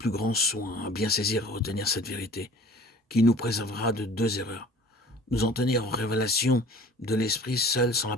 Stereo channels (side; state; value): both; normal; correlation 0.47